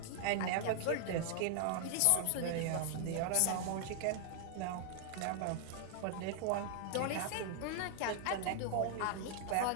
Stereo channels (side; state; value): both; different; correlation 0.00